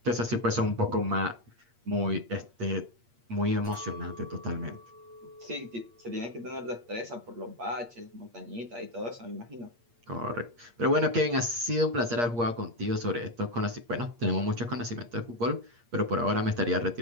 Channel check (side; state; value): left; late; 8.5 ms